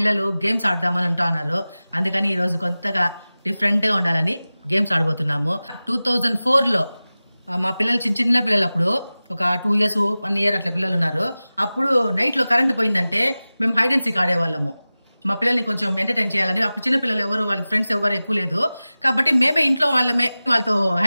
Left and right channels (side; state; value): both; inverted; correlation -0.97